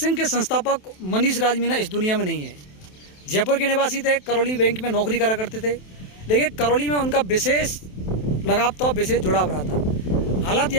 के संस्थापक मनीष राज मीना इस दुनिया में नहीं है। जयपुर के निवासी थे, करौली बैंक में नौकरी करा करते थे, लेकिन करौली में उनका विशेष लगाव था, विशेष जुड़ाव रहा था। हालात यह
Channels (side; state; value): right; late; 27 ms